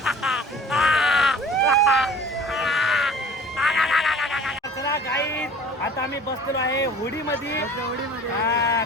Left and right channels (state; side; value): normal; both; correlation 0.47